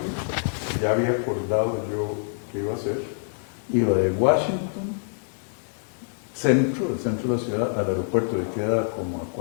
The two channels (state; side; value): silent; right; digital silence